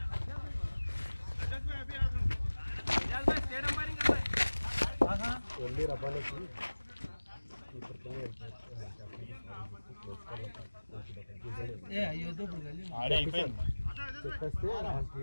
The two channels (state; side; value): inverted; both; correlation -1.00